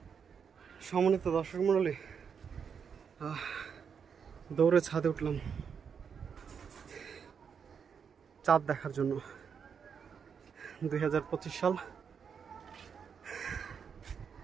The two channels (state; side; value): quieter; left; 6.8 dB